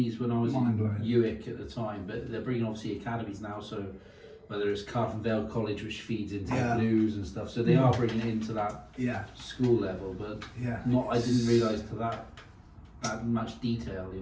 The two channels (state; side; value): identical; both; correlation 1.00